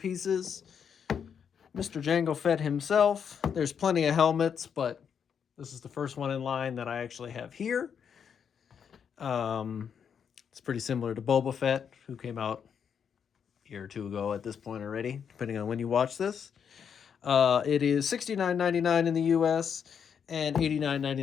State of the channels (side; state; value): right; quieter; 7.4 dB